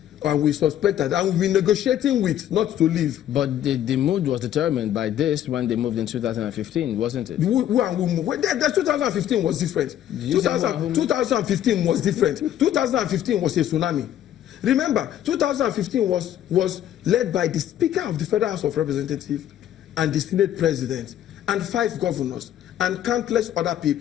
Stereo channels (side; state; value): right; quieter; 11.3 dB